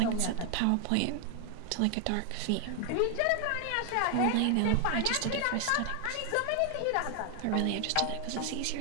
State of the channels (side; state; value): both; different; correlation 0.00